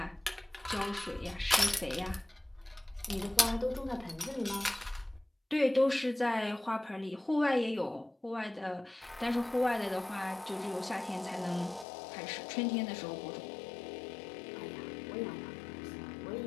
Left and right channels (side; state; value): right; drops out; at 11.9 s